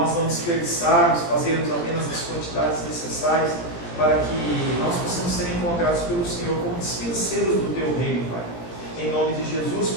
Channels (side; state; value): right; late; 18 ms